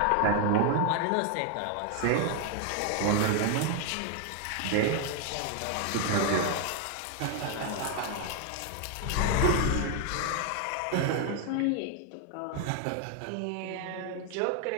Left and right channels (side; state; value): both; different; correlation 0.01